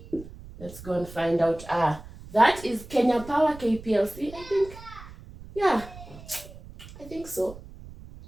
Let's go and find out. That is Kenya Power, KPLC. I think, yeah, I think so.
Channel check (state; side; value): noise; right; rumble, 16 dB below the sound